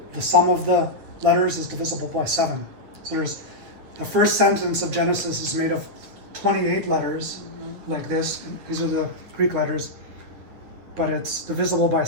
The sum of the letters is divisible by 7. So there's the first sentence of Genesis is made of 28 letters, like this. These are the Greek letters, but it's divisible by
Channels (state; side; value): late; left; 10 ms